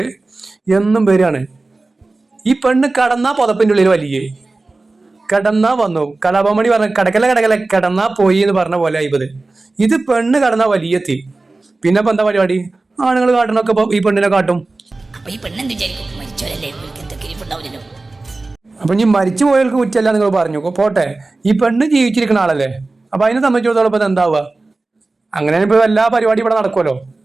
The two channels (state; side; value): quieter; left; 3.3 dB